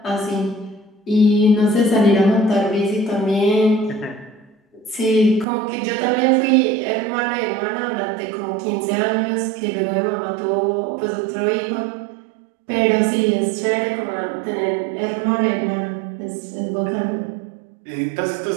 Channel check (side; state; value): left; drops out; at 5.5 s